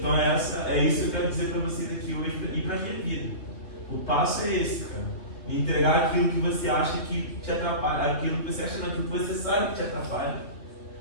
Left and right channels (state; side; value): late; right; 3.0 ms